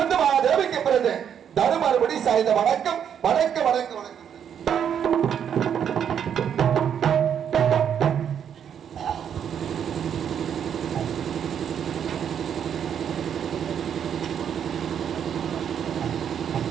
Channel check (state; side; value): quieter; left; 8.5 dB